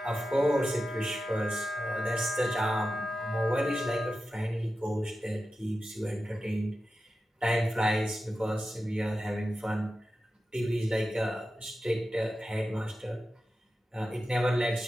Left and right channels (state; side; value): normal; both; correlation 0.92